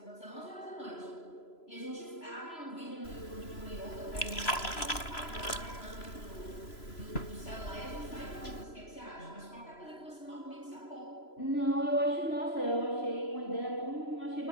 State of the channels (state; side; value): late; right; 3.0 ms